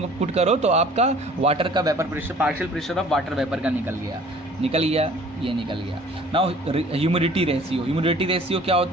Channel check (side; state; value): both; normal; correlation 0.51